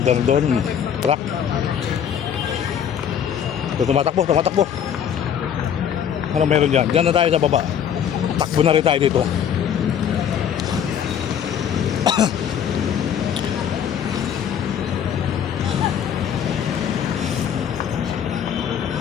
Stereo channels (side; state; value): right; quieter; 8.7 dB